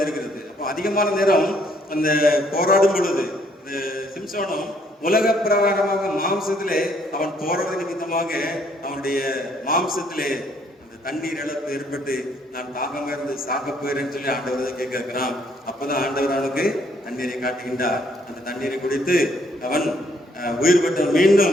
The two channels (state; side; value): normal; both; correlation 0.67